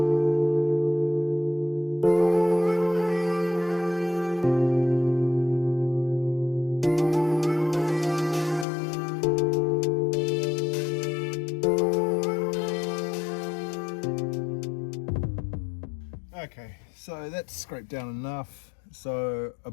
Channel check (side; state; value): right; drops out; at 8.7 s